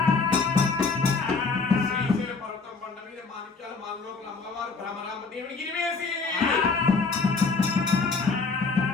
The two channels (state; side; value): quieter; right; 4.4 dB